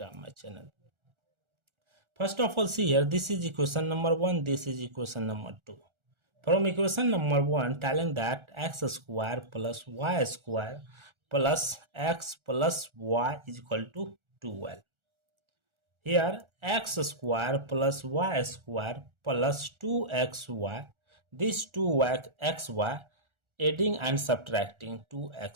my channel. First of all, see here, this is equation number 1, this is equation number 2. From equation number 1, telling that x square plus y square plus x plus y is equal to 12. Here, x square plus y square plus 2xy, this 2xy, adding and subtracting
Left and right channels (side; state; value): left; late; 1.4 ms